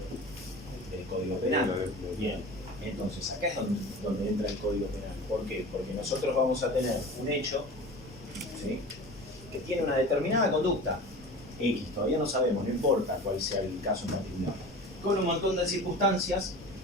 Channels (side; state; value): both; normal; correlation 0.36